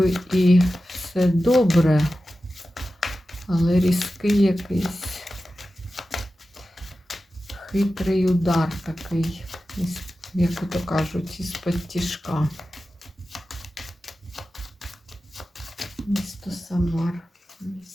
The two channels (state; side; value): normal; both; correlation 0.93